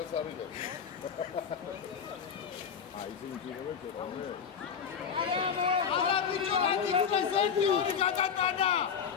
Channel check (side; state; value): right; quieter; 7.1 dB